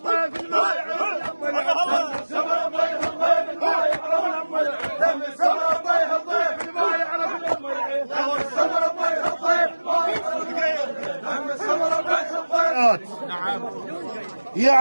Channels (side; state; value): both; inverted; correlation -1.00